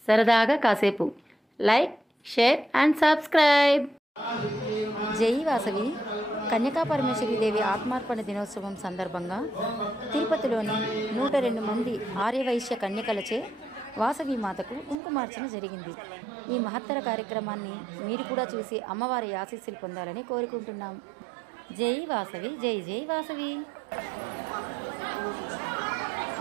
సరదాగా కాసేపు. Like, share and subscribe. జై వాసవి కన్యకా పరమేశ్వరీదేవి ఆత్మార్పణ దినోత్సవం సందర్భంగా తిరుపతిలోని 102 మంది ఆర్యవైశ్య కన్యకలచే వాసవి మాతకు కుంకుమార్చన జరిగింది. ఈ మహత్తర కార్యక్రమాన్ని మీరు కూడా చూసి అమ్మవారి ఆశీస్సులు పొందాలని కోరుకుంటున్నాం. జై వాసవి, జై జై వాసవి.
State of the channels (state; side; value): drops out; left; at 15.0 s